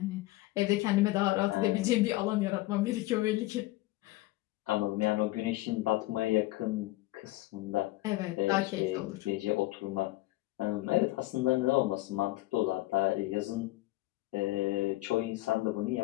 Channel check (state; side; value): quieter; right; 18.5 dB